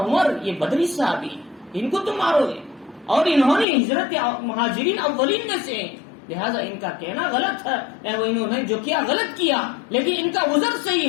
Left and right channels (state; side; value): drops out; right; at 3.7 s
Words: عمر یہ بدری صحابی ان کو تم مارو گے، اور انہوں نے ہجرت مہاجرین اولین میں سے، لہذا ان کا کہنا غلط ہے، انہوں نے جو کیا غلط کیا، لیکن ان کا عذر